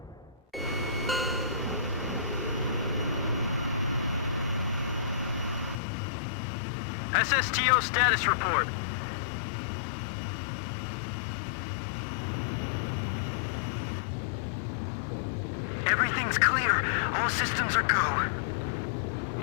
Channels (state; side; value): drops out; right; at 5.8 s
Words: SSTO status report. Everything's clear. All systems are go.